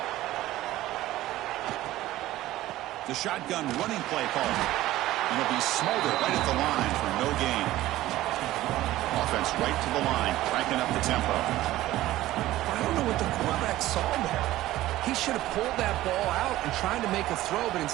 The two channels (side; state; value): left; quieter; 15.7 dB